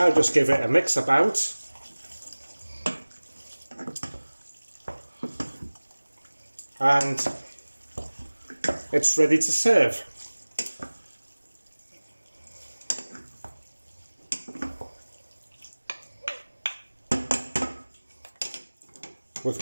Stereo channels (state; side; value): inverted; both; correlation -1.00